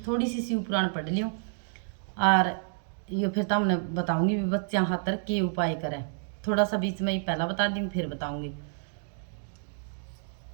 थोड़ी सी शिव पुराण पढ़ लियो और ये फिर तो हमने बताऊंगी भी बच्चा खातर के उपाय करें। थोड़ा सा बीच में ही पहला बता दूंगी फिर बताऊंगी।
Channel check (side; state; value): left; silent; digital silence